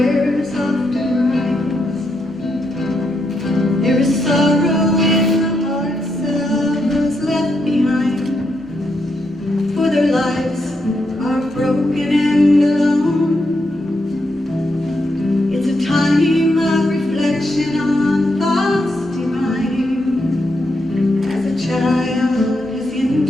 often rise. There is sorrow in the hearts of those left behind, for their lives are broken and alone. It's a time of reflection on thoughts divine, as a child has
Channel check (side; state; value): both; normal; correlation 0.81